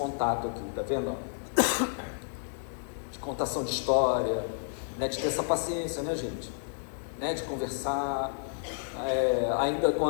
aqui, tá vendo? De contação de história, né? De ter essa paciência, né, gente? Né? De conversar, ainda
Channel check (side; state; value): right; silent; digital silence